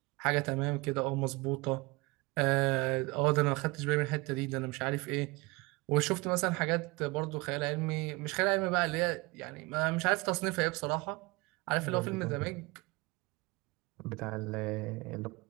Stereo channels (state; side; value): quieter; left; 24.5 dB